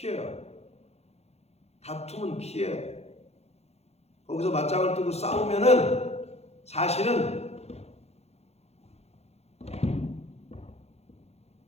다툼은 피해야 돼. 거기서 맞짱을 뜨고 싸우면은 사실은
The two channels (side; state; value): right; late; 0.31 ms